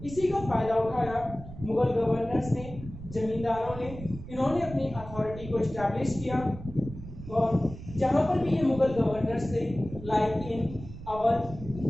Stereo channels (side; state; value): right; noise; rumble, 13 dB below the sound